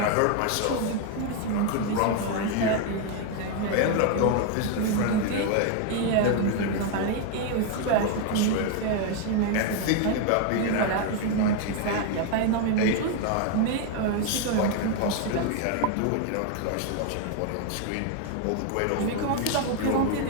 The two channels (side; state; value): both; different; correlation 0.00